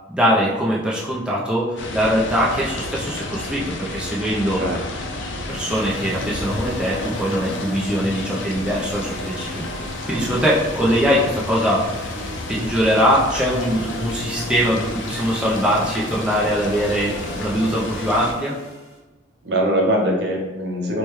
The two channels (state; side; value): normal; both; correlation 0.52